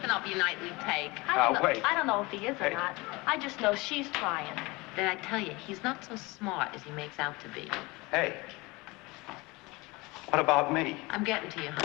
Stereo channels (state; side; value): quieter; right; 23.8 dB